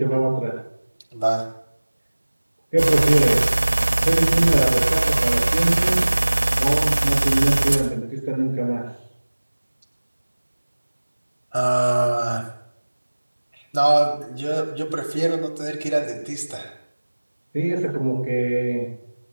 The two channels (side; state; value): both; inverted; correlation -1.00